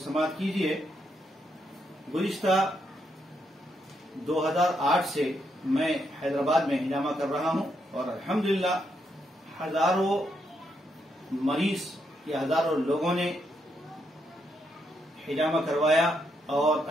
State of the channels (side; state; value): both; normal; correlation 0.79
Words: समाअत कीजिए। गुज़िश्ता 2008 से मैं हैदराबाद में हिजामा कर रहा हूं और अल्हम्दुलिल्लाह हजारों मरीज या हजारों लोगों ने हिजामा करवाया और